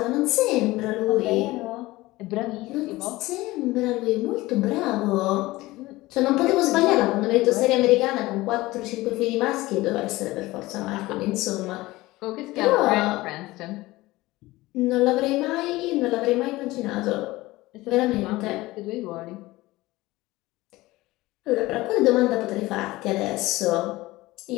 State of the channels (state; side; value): quieter; right; 19.2 dB